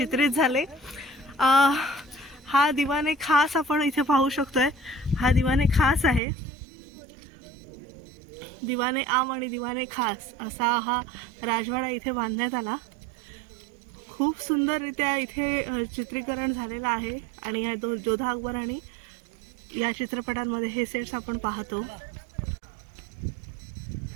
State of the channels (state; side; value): drops out; left; at 6.2 s